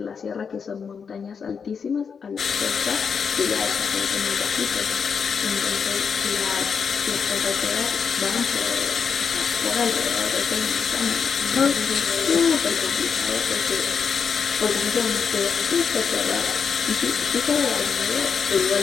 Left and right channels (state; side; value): quieter; right; 6.2 dB